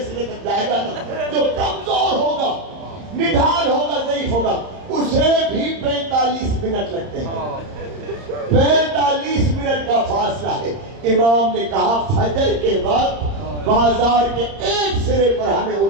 سرے تک جائے گا نا، جو کمزور ہوگا، نڈھال ہوگا، ضعیف ہوگا، اسے بھی 45 منٹ لگتے ہیں. 45 منٹ کا فاصلہ ہے. امام نے کہا فجر کے وقت بازار کے ایک سرے پر ہمیں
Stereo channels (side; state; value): left; late; 30 ms